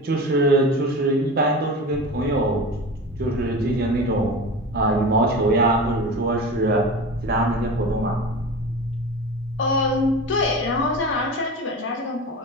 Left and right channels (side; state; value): both; normal; correlation 0.30